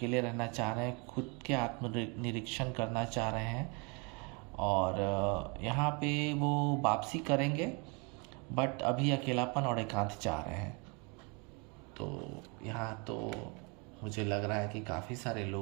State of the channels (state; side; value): quieter; left; 31.8 dB